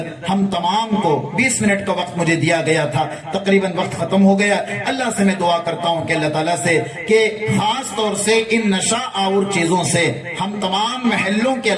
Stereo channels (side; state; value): both; identical; correlation 1.00